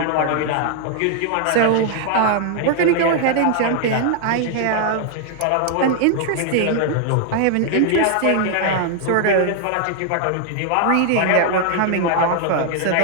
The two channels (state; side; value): different; both; correlation 0.00